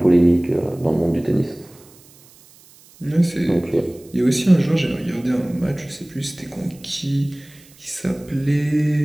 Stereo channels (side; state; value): right; noise; hiss, 26 dB below the sound